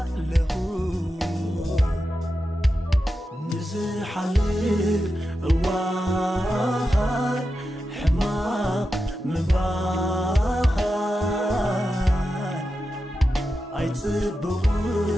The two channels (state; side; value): normal; both; correlation 0.90